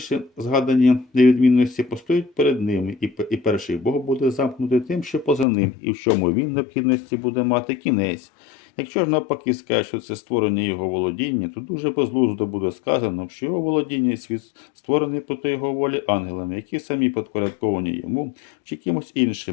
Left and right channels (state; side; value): drops out; right; at 5.5 s